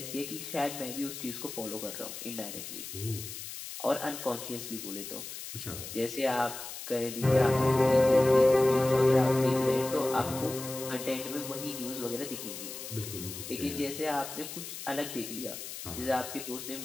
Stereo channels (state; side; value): noise; left; hiss, 9 dB below the sound